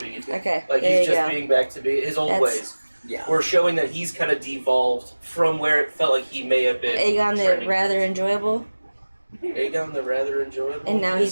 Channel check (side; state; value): both; inverted; correlation -1.00